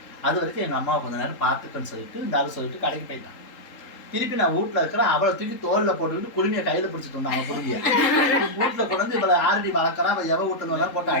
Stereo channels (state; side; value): late; right; 3.8 ms